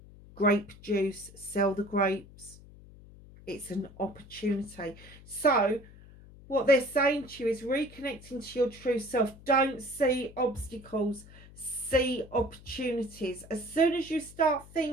grape juice, sell the grapes. It's an opportunity. So what they're saying to you is reconnecting to your true self. Don't see obstacles, see opportunities. As soon as you start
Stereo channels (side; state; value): left; noise; hum, 20 dB below the sound